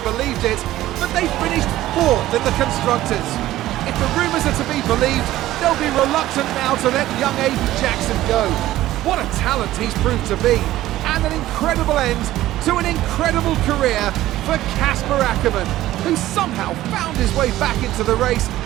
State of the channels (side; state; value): left; quieter; 15.0 dB